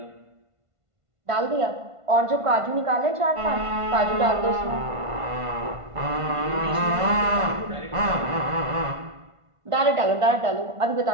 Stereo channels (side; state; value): left; late; 1.5 ms